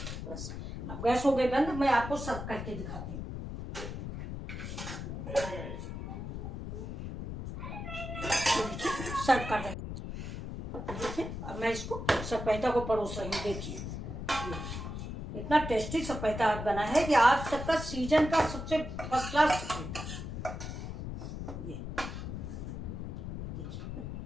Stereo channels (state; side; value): noise; left; rumble, 6 dB below the sound